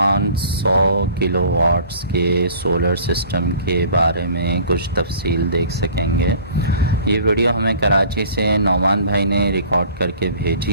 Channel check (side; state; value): both; inverted; correlation -0.48